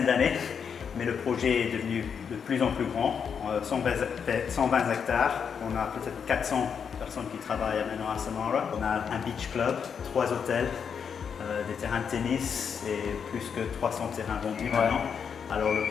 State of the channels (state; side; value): quieter; right; 6.9 dB